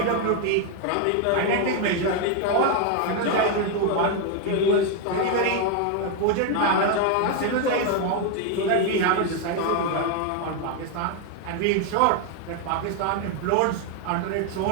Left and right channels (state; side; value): different; both; correlation 0.01